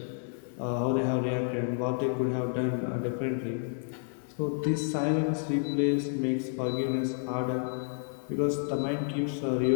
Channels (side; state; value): right; silent; 58 dB below the other